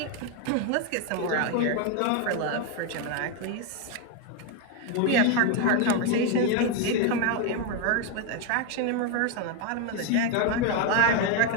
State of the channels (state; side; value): different; both; correlation 0.02